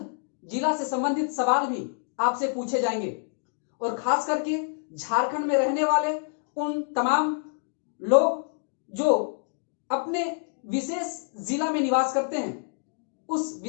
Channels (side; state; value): right; silent; digital silence